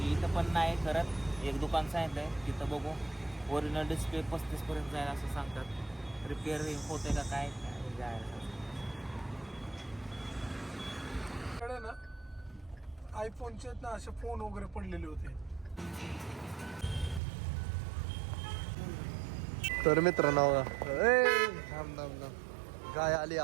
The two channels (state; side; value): drops out; left; at 17.2 s